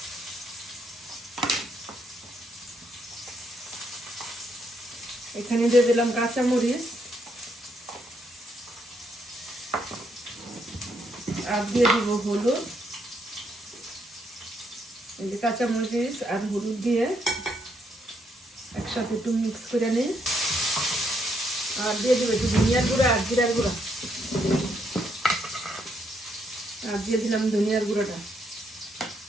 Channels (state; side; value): normal; both; correlation 0.75